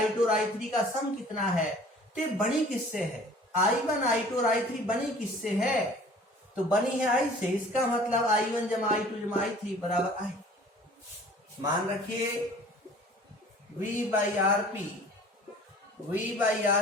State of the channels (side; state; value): both; normal; correlation 0.49